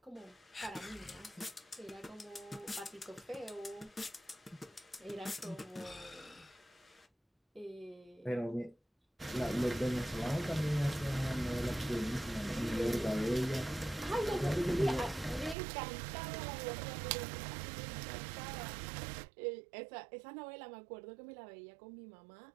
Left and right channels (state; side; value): drops out; left; at 15.6 s